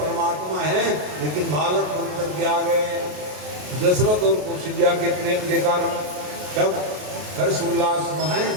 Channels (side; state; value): left; late; 33 ms